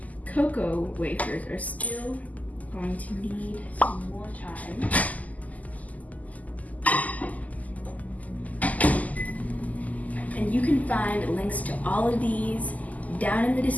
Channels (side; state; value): right; late; 0.077 ms